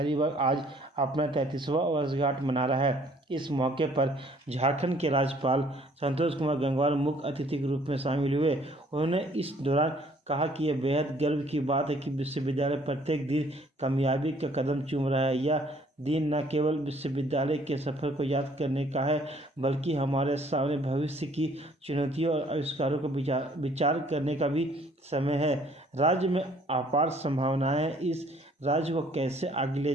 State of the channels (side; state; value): both; normal; correlation 0.60